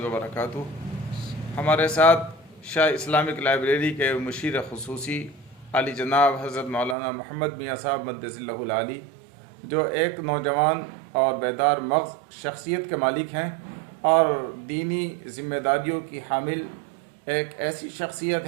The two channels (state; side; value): drops out; left; at 7.0 s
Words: وبرکاتہ۔ ہمارے ساتھ شاہ اسلامک لائبریری کے مشیر خصوصی عالی جناب حضرت مولانا محمد میاں صاحب مدث اللہ العالی، جو ایک نوجوان اور بیدار مغز شخصیت کے مالک ہیں اور دینی ذمہ داریوں کی حامل ایک ایسی شخصیت